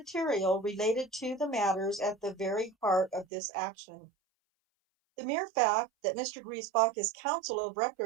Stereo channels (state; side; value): drops out; left; at 3.2 s